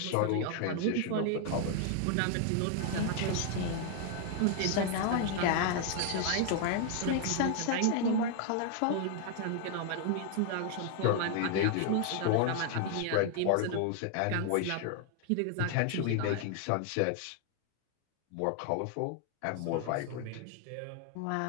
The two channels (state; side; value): different; both; correlation 0.00